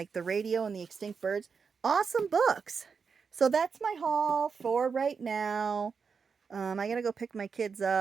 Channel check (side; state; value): left; quieter; 5.7 dB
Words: the radio and the extinct birds, awesome books. So that's my haul for right now. I got to go pick my kids